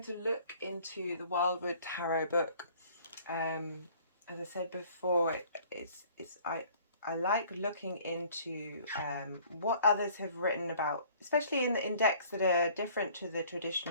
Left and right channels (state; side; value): inverted; both; correlation -0.54